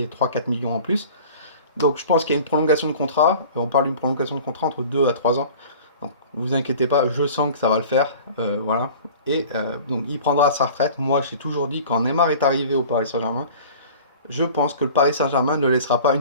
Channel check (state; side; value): inverted; both; correlation -0.43